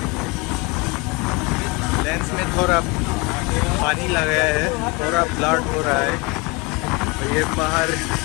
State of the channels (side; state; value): right; quieter; 26.2 dB